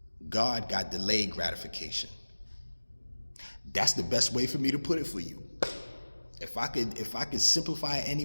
God got delayed gratification. That's the best way for me to put it for you. If I could simplify it any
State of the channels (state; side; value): inverted; both; correlation -1.00